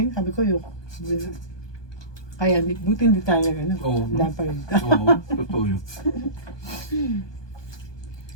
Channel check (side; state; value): right; late; 1.2 ms